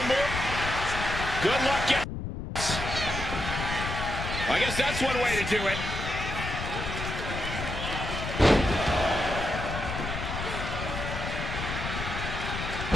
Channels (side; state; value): left; noise; rumble, 5 dB below the sound